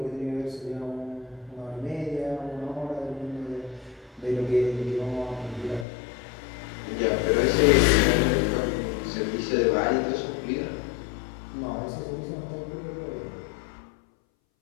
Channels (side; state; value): right; drops out; at 5.9 s